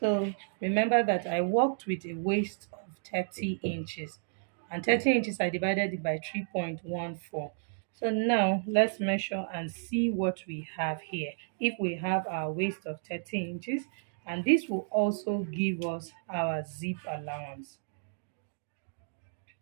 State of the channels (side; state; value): left; silent; digital silence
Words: remember that I worked with a waist of 30 inches, and 30 inches I divided it by 3.14. So now let's measure and see what we have here. If we have our waist of 30 inches, and this will also give us our zip allowance.